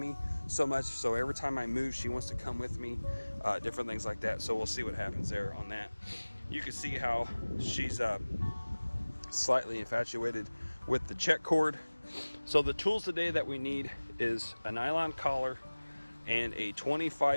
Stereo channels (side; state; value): both; inverted; correlation -1.00